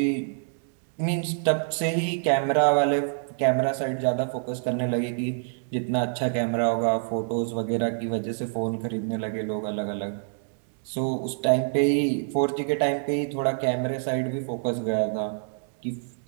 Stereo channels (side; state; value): left; silent; digital silence